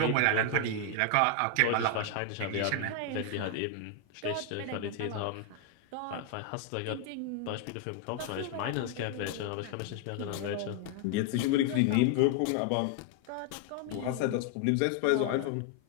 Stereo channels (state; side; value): different; both; correlation 0.01